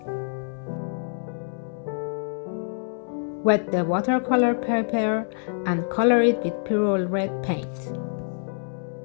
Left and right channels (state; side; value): silent; right; 61 dB below the other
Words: Wet the watercolor paper and color it with purple red paint.